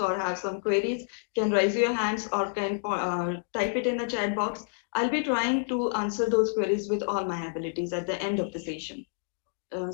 have some queries, can raise your hands or can type it in the chat box. I'll be trying to answer those queries with all my abilities at the end of the session.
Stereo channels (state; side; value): silent; right; digital silence